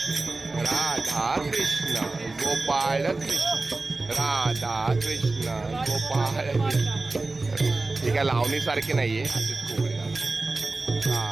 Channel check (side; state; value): left; quieter; 3.3 dB